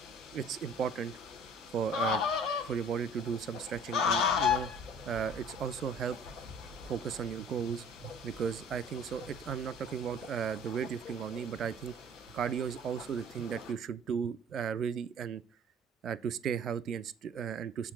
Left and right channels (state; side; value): normal; both; correlation 0.50